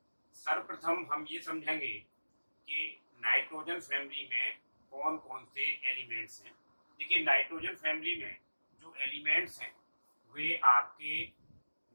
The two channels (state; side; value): inverted; both; correlation -1.00